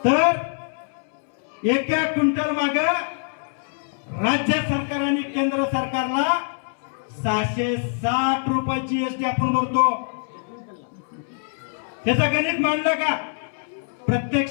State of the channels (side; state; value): right; silent; 63 dB below the other